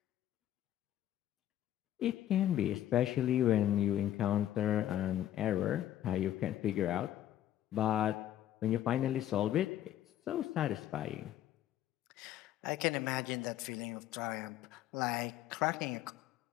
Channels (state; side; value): quieter; right; 12.2 dB